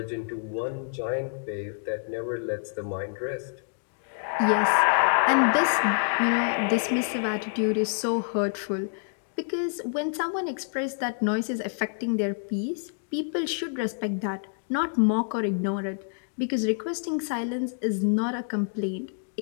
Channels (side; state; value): right; silent; digital silence